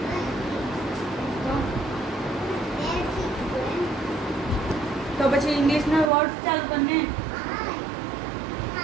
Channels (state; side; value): drops out; left; at 6.1 s